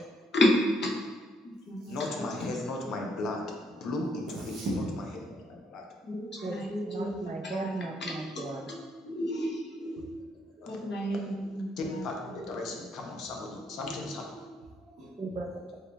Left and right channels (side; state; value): both; normal; correlation 0.72